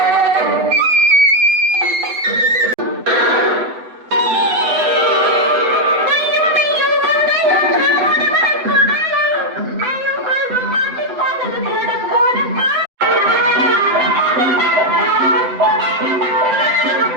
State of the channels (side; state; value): left; late; 7.9 ms